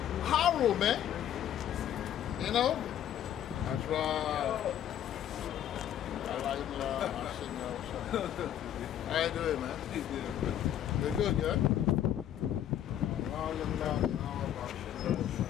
horror, man. You know? That's right. How you doing, man? You're good, yeah?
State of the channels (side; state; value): right; quieter; 10.7 dB